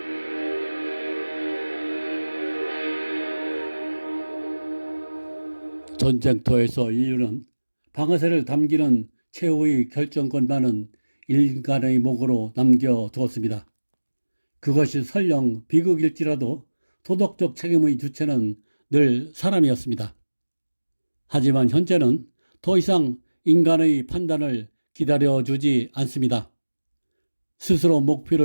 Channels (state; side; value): inverted; both; correlation -1.00